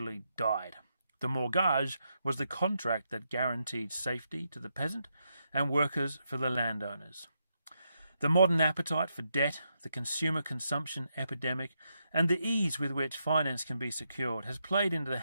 died. The mortgage was the contract that guaranteed safety to the peasant and workers for the landowners. The modern appetite for debt, the consumer consumption epidemic, and the ease with which finance can be secured has played into the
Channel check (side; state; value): both; inverted; correlation -0.82